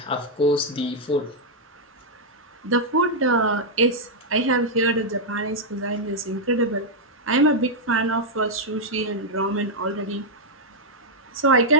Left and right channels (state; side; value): normal; both; correlation -0.04